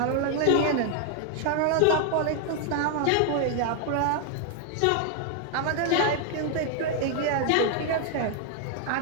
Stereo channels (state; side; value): different; both; correlation 0.00